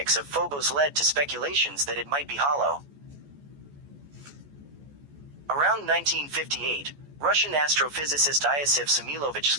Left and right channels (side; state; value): left; late; 14 ms